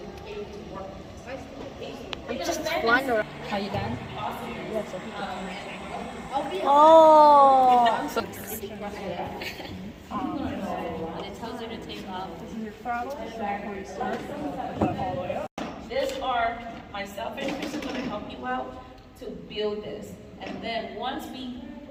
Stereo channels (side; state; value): both; identical; correlation 1.00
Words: be able to work precisely. just flying around. Are you done? Yeah, so people Oh. Oh! So When it tells you to take off. This is your throttle. So before you start, put that all the way up. These are myself and Chris are going to help you out to build this. And then once we